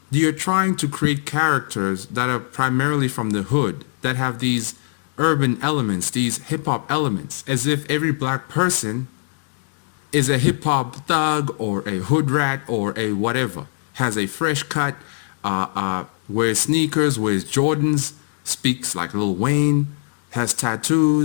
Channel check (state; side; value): silent; right; 63 dB below the other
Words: you're trying to create characters that are primarily from the hood, that have these urban elements, these hip hop elements, as if every black person is a hip hop thug or a hood rat or a whatever, has a fresh cut, wears sneakers, wears Jordans, speaks like Lil Wayne, has